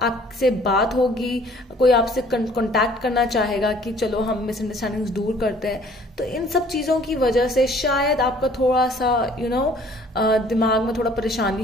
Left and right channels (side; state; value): both; normal; correlation 0.56